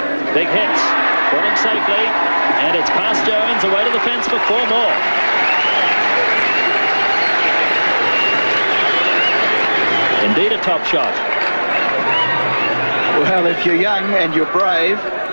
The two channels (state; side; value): inverted; both; correlation -1.00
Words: Big hits. Falling safely. And it's past Jones, away to the fence for 4 more. Indeed a top shot. Well, if you're young and you're brave,